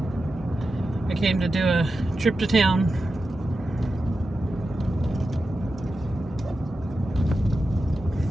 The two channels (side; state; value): both; normal; correlation 0.91